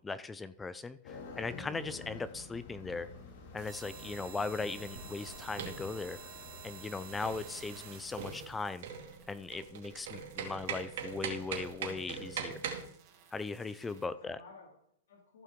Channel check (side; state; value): both; normal; correlation 0.55